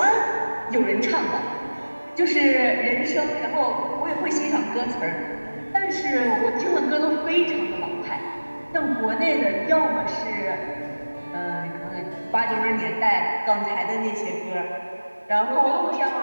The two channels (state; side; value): inverted; both; correlation -1.00